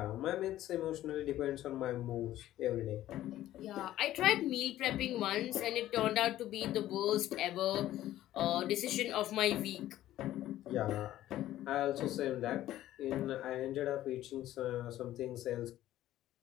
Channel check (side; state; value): right; quieter; 13.8 dB